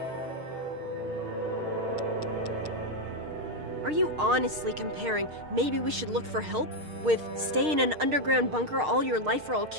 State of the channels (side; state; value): left; late; 6.5 ms